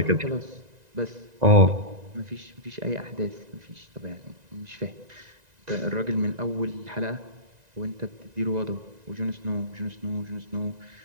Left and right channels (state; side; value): late; left; 1.9 ms